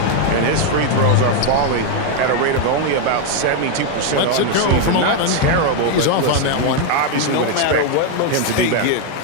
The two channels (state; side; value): different; both; correlation 0.00